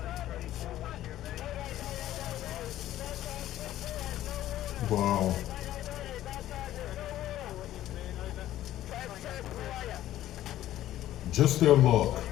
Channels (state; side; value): quieter; right; 13.4 dB